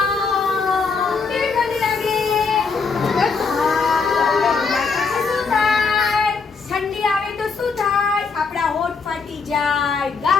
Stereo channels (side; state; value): right; quieter; 4.9 dB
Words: કેવી ઠંડી લાગે? શું થાય? ઠંડી આવે તો શું થાય? આપણા હોઠ ફાટી જાય,